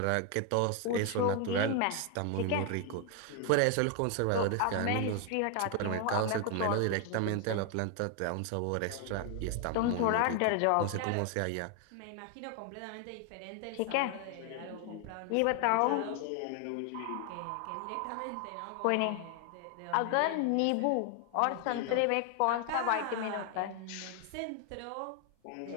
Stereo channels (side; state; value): both; different; correlation 0.00